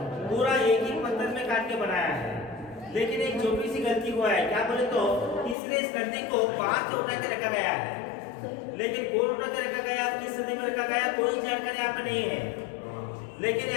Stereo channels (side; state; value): right; drops out; at 5.6 s